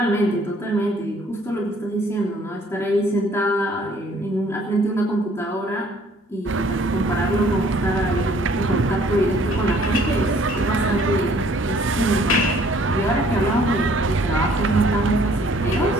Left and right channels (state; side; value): normal; both; correlation 0.59